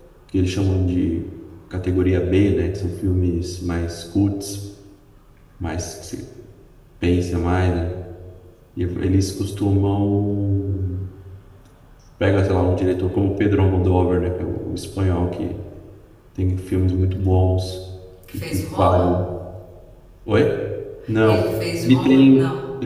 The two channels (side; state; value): both; identical; correlation 1.00